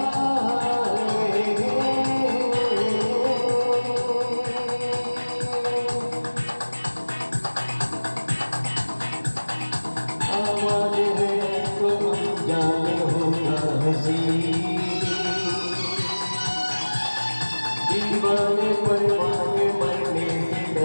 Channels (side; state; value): both; inverted; correlation -1.00